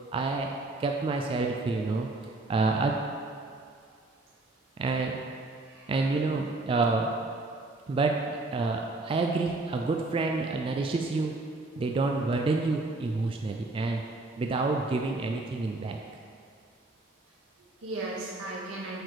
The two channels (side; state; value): left; quieter; 3.0 dB